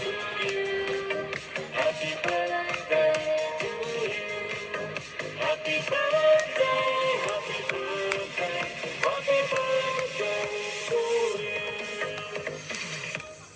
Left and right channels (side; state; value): both; identical; correlation 1.00